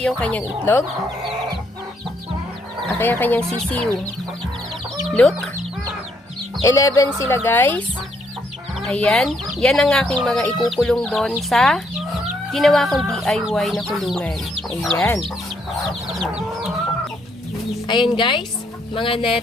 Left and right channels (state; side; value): normal; both; correlation 0.72